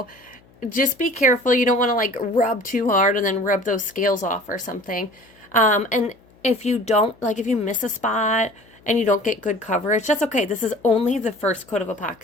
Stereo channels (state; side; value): noise; left; hum, 29 dB below the sound